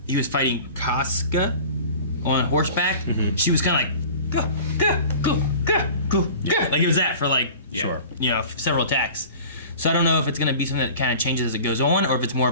he was fighting Casca on horseback, she was kind of like go go go go go go, like it was that for like Yeah. Sure. you know several attacks. So I don't know if it's gonna be something that kind of changes as it goes on, or if it's more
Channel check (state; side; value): inverted; both; correlation -0.41